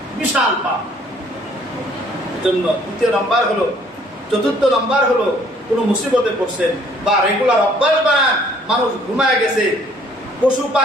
বিশাল পাপ। জন্য তৃতীয় নাম্বার হলো, চতুর্থ নাম্বার হলো, কোনো মুসিবতে পড়ছেন বা রেগুলার অভ্যাস বানান, মানুষ ঘুমায় গেছে, পশু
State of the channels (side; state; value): both; normal; correlation 0.60